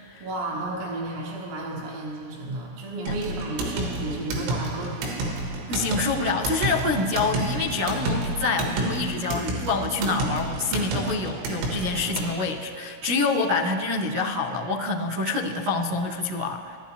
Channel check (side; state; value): left; late; 17 ms